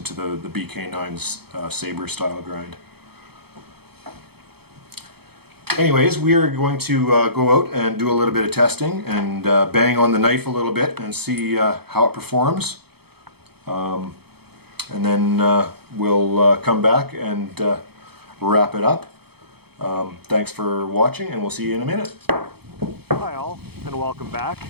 to the BK9's saber style grind. Anyways, we are going to go out and do a little bit of testing and bang on the knife a little bit and see how it performs. And then we'll come back and wrap it up. Thanks for watching, and we'll see you in a minute. Hi all, and welcome back.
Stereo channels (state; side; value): late; left; 0.97 ms